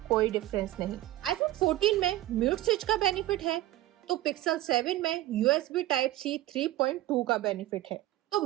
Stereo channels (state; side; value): quieter; left; 15.6 dB